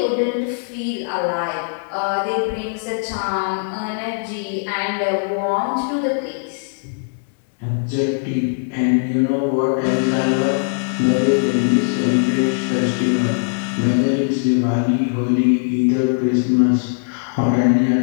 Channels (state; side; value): silent; right; digital silence